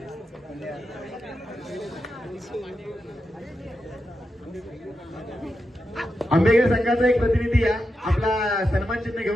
आंबेकर संघाचा एक प्रतिनिधी या आपला सन्मान चिन्ह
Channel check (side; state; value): both; normal; correlation 0.88